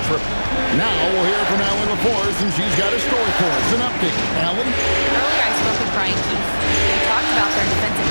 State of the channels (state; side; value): inverted; both; correlation -1.00